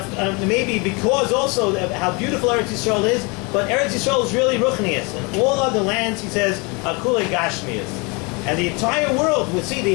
maybe because also of how beautiful Eretz Yisrael is, but Eretz Yisrael is really Ruchnius. And all other lands, he says, are Kulei Gashmias. And the entire world, we see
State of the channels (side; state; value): right; quieter; 29.5 dB